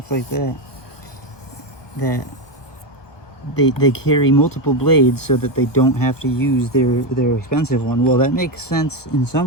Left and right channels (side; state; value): right; late; 1.2 ms